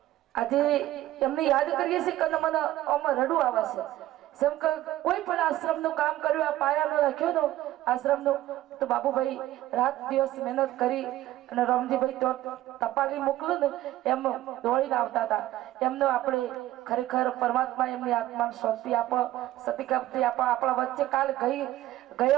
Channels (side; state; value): left; quieter; 14.9 dB